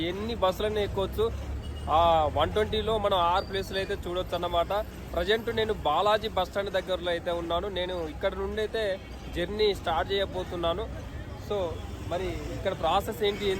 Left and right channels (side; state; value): both; identical; correlation 1.00